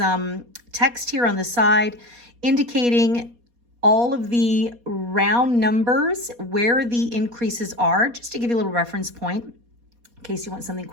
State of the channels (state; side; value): late; left; 4.2 ms